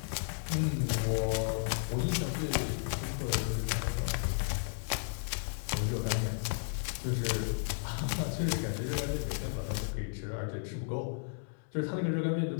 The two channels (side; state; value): right; silent; digital silence